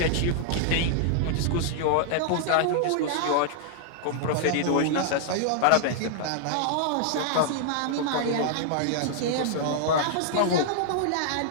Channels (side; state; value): both; different; correlation -0.01